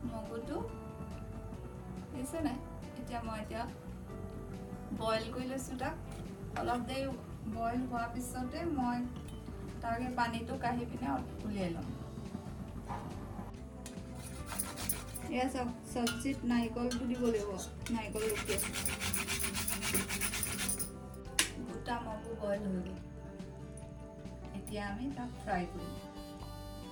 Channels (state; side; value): identical; both; correlation 1.00